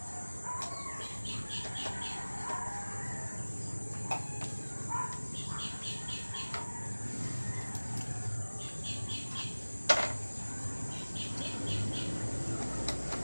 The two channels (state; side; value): inverted; both; correlation -1.00